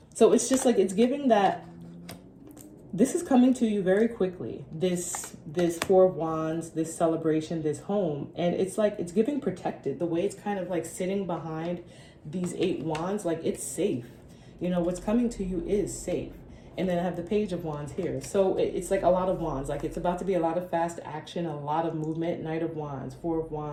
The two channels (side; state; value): both; identical; correlation 1.00